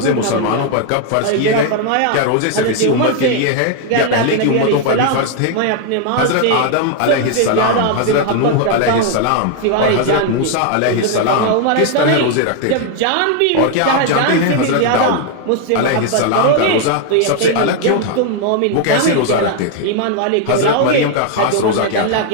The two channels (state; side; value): different; both; correlation 0.00